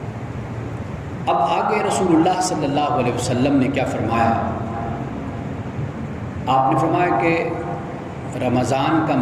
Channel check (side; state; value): both; identical; correlation 1.00